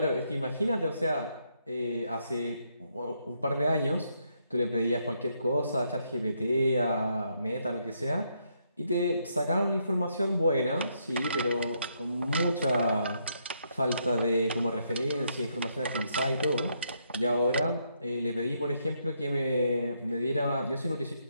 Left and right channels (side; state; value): both; inverted; correlation -0.76